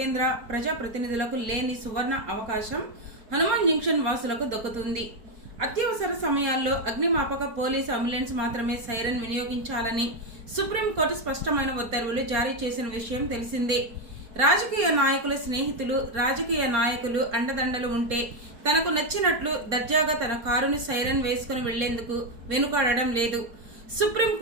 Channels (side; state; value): left; late; 4.6 ms